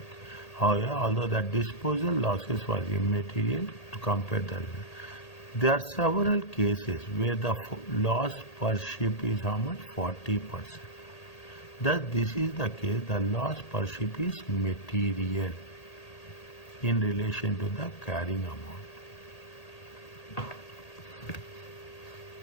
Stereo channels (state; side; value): late; right; 1.8 ms